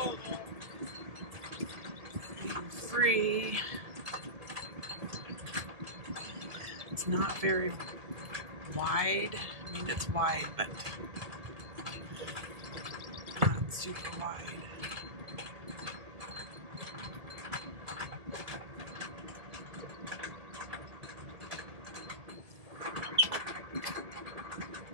I'm free. It's not very wide. I mean, it's wide, but not super wide.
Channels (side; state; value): left; late; 2.0 ms